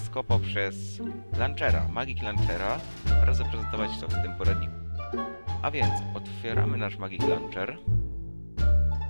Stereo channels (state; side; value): inverted; both; correlation -1.00